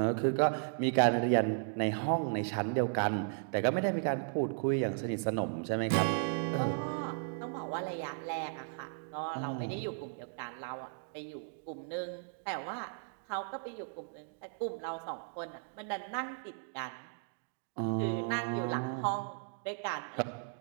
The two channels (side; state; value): left; silent; digital silence